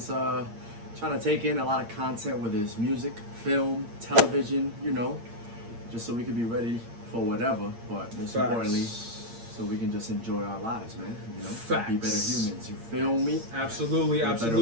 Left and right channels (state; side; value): late; left; 8.7 ms